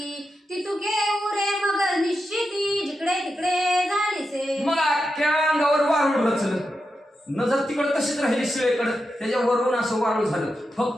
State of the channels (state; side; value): normal; both; correlation 0.88